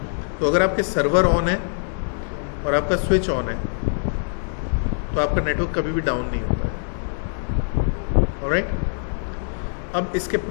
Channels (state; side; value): silent; right; digital silence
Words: तो अगर आपके सर्वर ऑन है और आपका स्विच ऑन है तो आपका नेटवर्क कभी भी डाउन नहीं होता है। ऑलराइट, अब इसके